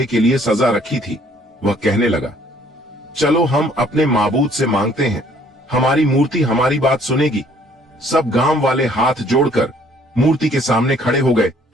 के लिए सजा रखी थी, वह कहने लगा, चलो हम अपने माबूद से मांगते हैं, हमारी मूर्ति हमारी बात सुनेगी। सब गांव वाले हाथ जोड़कर मूर्ति के सामने खड़े हो गए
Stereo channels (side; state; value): both; normal; correlation 0.60